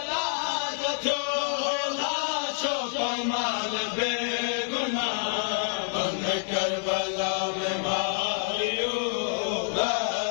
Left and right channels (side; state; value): right; silent; 60 dB below the other